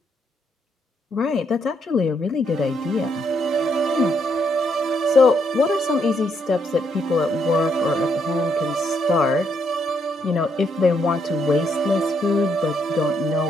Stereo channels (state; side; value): normal; both; correlation 0.75